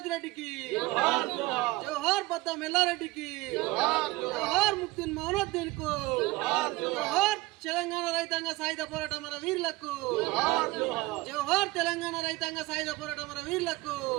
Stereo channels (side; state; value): left; quieter; 20.6 dB